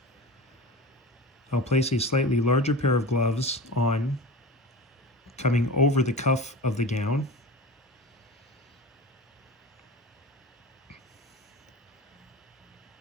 I'll place a slightly larger pair of gloves on, coming over the cuff of the gown.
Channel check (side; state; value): both; normal; correlation 0.31